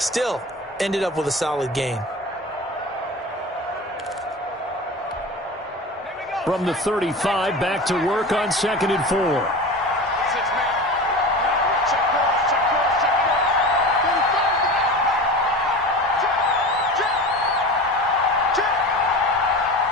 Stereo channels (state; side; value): normal; both; correlation 0.32